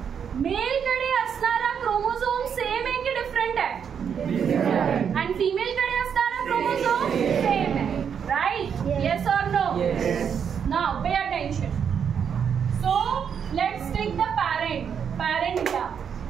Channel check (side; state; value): left; quieter; 7.5 dB